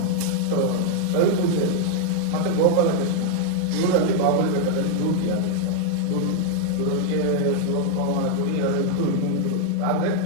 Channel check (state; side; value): different; both; correlation 0.00